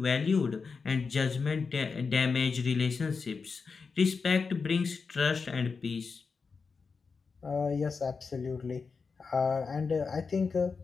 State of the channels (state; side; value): quieter; right; 5.0 dB